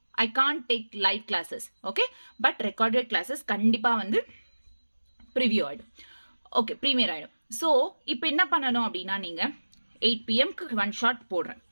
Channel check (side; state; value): both; inverted; correlation -1.00